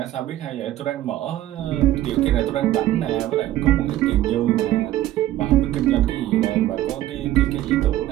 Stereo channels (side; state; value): left; quieter; 13.9 dB